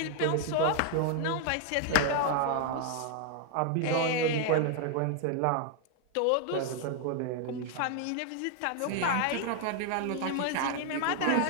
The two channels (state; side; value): different; both; correlation 0.00